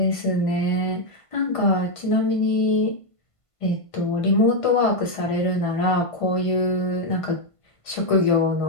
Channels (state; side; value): late; right; 1.5 ms